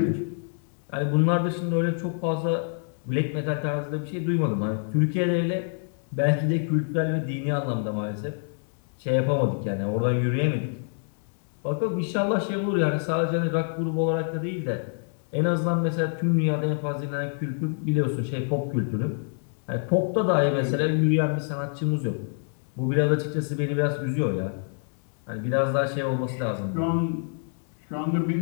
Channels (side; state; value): right; silent; 61 dB below the other